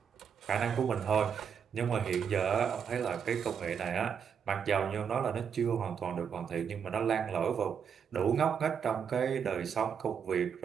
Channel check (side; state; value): left; quieter; 7.3 dB